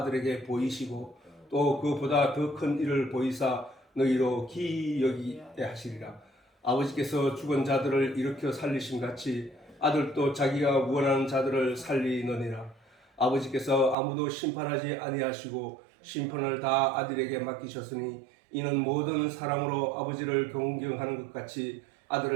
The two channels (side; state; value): left; drops out; at 14.0 s